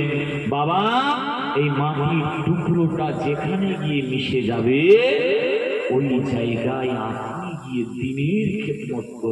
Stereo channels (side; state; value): both; identical; correlation 1.00